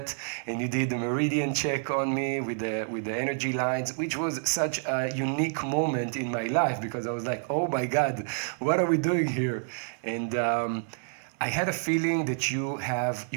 and you did the meridian check on me with the energy lines, which was such a unique moment in my life, because I was like, oh my God, what are we doing here? And I had a feeling that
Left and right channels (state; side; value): silent; left; digital silence